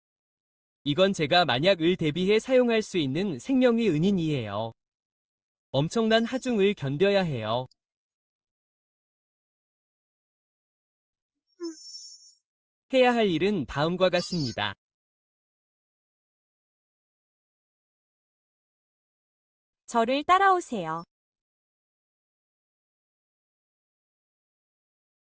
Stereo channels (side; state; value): both; identical; correlation 1.00